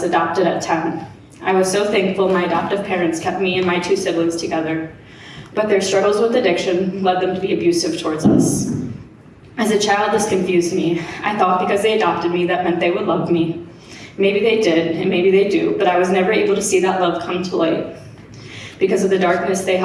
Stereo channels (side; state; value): both; identical; correlation 1.00